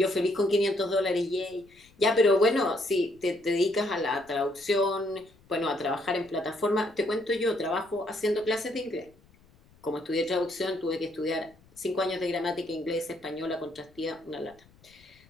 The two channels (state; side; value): noise; left; rumble, 29 dB below the sound